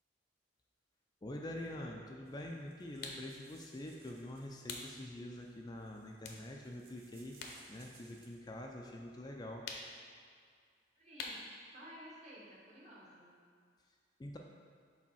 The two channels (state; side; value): normal; both; correlation 0.56